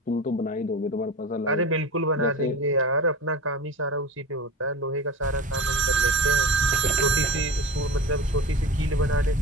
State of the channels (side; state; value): both; normal; correlation 0.31